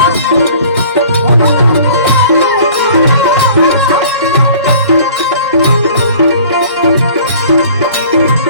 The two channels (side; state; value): both; inverted; correlation -0.49